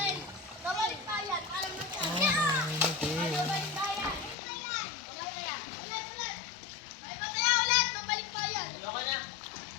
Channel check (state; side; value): drops out; right; at 4.4 s